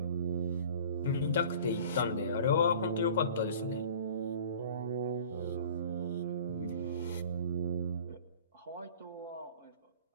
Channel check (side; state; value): both; inverted; correlation -0.44